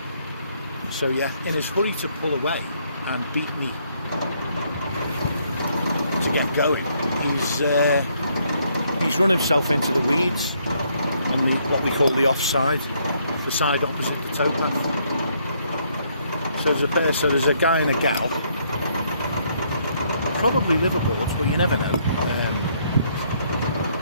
So yeah, in his hurry to pull away and beat me to get going, he's run himself into the weeds on what we call the offside, the side opposite the towpath. So there's a guy and a gal, probably liveaboards, but you never know.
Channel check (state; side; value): inverted; both; correlation -0.70